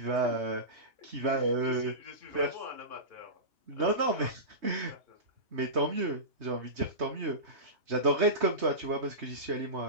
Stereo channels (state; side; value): late; left; 3.2 ms